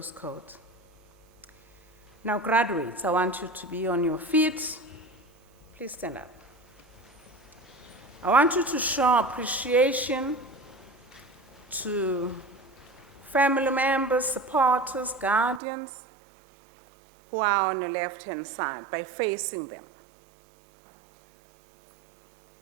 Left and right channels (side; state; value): left; drops out; at 15.6 s